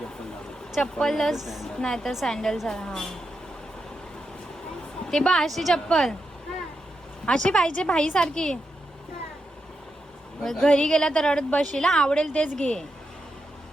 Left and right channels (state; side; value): normal; both; correlation 0.86